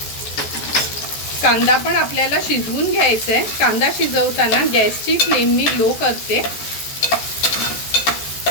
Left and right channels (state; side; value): late; right; 14 ms